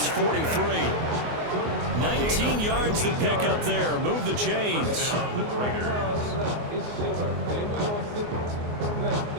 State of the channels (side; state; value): left; late; 24 ms